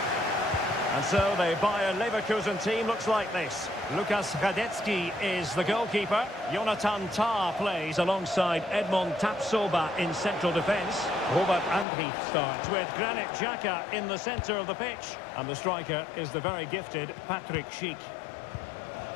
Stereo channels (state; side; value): drops out; right; at 11.9 s